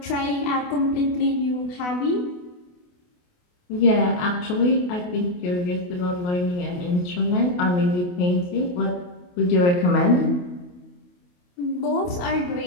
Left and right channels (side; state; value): right; late; 28 ms